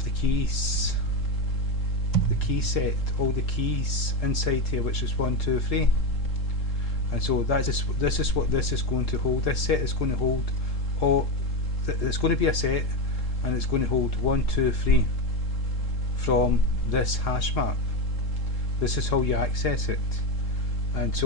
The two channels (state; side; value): late; right; 3.7 ms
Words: the keys, the key set, all the keys inside here, which is 1, 2, 3, and so this is what this is going to hold. This set is going to hold all. It's going to be a set, and it's going to hold 1, 2, 3 from this hash map. This is how you access it. And